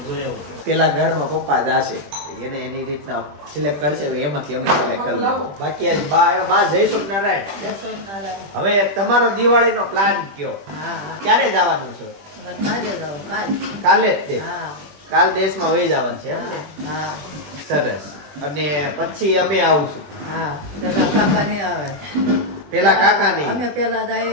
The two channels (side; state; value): left; late; 20 ms